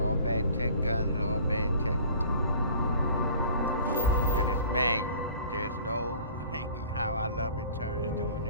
all bad tech. And it's manual. There's no how I love it turns doing the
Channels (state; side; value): inverted; both; correlation -0.47